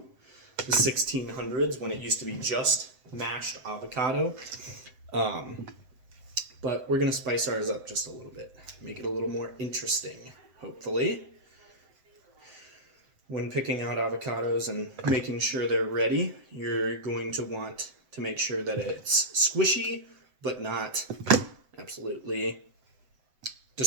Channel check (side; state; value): left; late; 7.8 ms